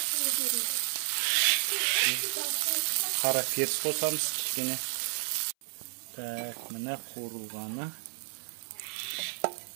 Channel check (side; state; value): left; silent; 57 dB below the other